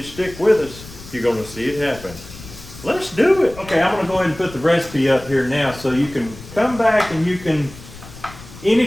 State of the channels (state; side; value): noise; left; rumble, 17 dB below the sound